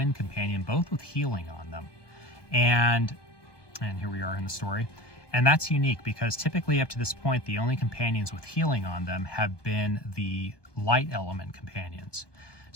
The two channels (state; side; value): late; right; 1.2 ms